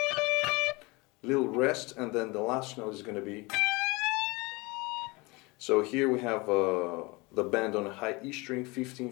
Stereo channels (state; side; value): quieter; right; 25.3 dB